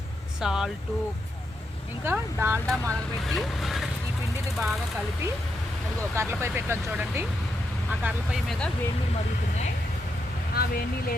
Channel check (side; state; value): both; normal; correlation 0.82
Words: సాల్టు, ఇంకా డాల్డా మరగబెట్టి ఈ పిండిని బాగా కలిపి అదిగో కర్రలపై పెట్టాను చూడండి. ఆ కర్రలపై మీద వేడి నీళ్ళు మరుగుతున్నాయి. ఆ వేడి నీళ్ళు